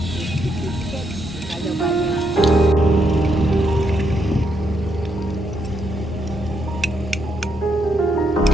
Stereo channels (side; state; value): both; normal; correlation 0.78